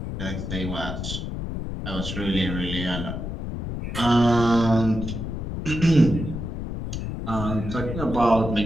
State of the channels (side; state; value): left; noise; rumble, 5 dB below the sound